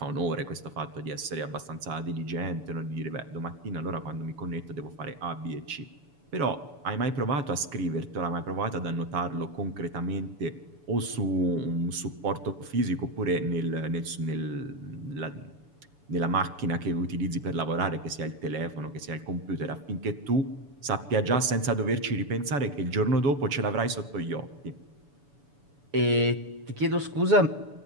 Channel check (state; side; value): late; left; 7.0 ms